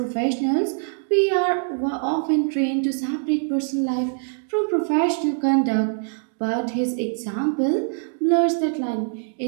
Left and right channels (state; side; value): silent; left; digital silence